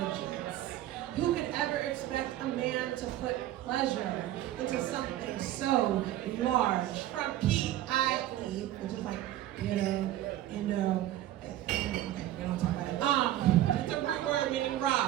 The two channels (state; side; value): quieter; left; 13.6 dB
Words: Who could ever expect a man to put pleasure into something so large? From P-I-E, which is like, okay, we don't talk about it. It's a root word meaning